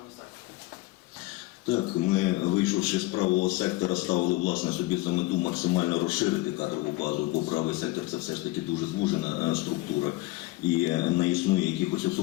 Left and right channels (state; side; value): quieter; right; 19.5 dB